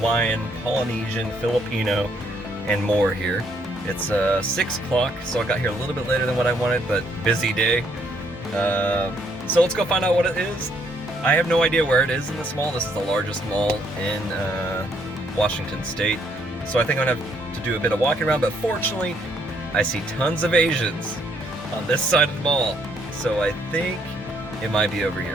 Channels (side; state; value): both; normal; correlation 0.70